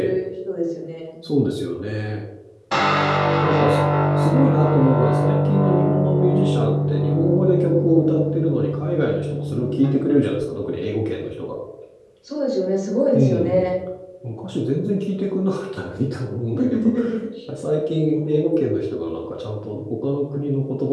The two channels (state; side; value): identical; both; correlation 1.00